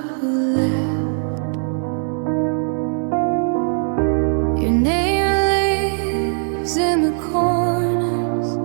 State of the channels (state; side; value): silent; left; 57 dB below the other